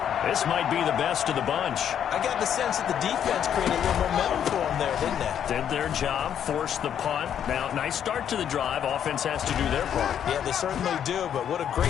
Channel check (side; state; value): right; quieter; 9.2 dB